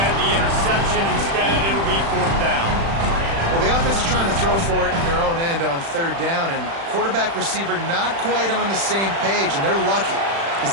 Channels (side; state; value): left; late; 36 ms